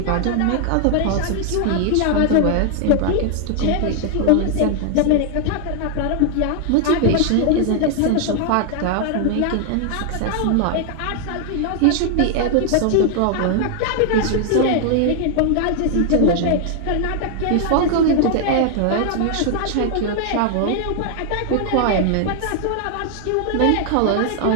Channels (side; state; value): both; different; correlation 0.00